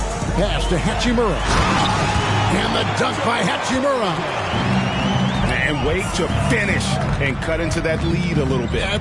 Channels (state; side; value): identical; both; correlation 1.00